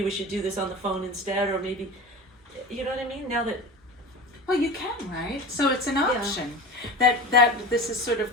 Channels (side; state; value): both; normal; correlation 0.31